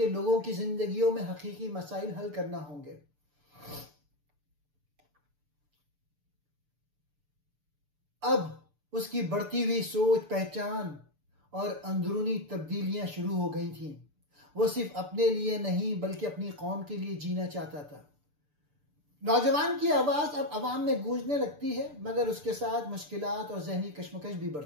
लोगों की जिंदगियों में हकीकी मसाइल हल करना होंगे। अब उसकी बढ़ती हुई सोच, पहचान और अंदरूनी तब्दीलियां शुरू हो गई थीं। वो सिर्फ अपने लिए नहीं बल्कि अपनी कौम के लिए जीना चाहता था। नौजवान की आवाज अब अवाम में गूंजने लगती है मगर उसके साथ मुश्किलात और जहनी कश्मकश भी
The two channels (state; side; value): late; left; 6.8 ms